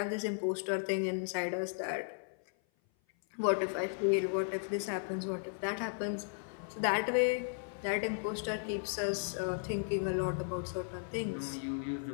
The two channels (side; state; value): right; silent; 54 dB below the other